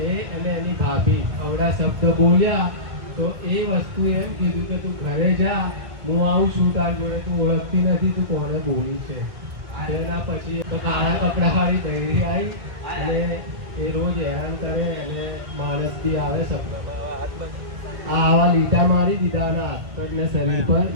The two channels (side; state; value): left; late; 1.6 ms